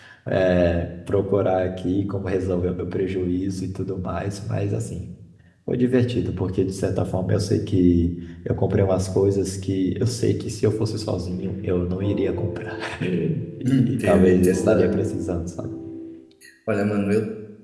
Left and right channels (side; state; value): both; identical; correlation 1.00